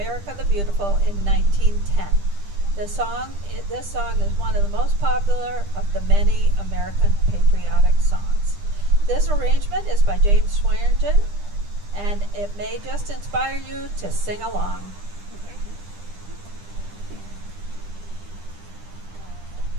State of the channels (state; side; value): late; left; 10 ms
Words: the Beautiful in 1910. This song is one of the most popular of the many American patriotic songs. This arrangement is by James Swearingen, and it may just inspire you to sing along.